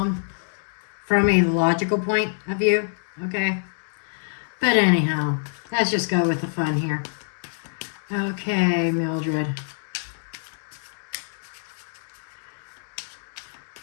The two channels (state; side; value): silent; right; digital silence